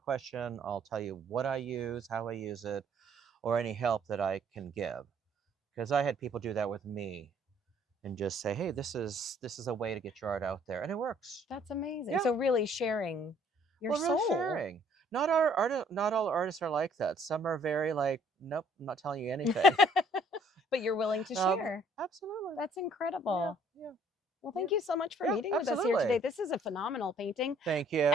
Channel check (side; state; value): both; normal; correlation 0.61